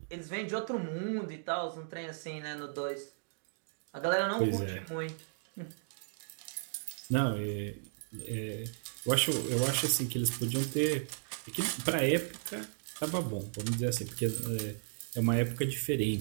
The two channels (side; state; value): left; silent; digital silence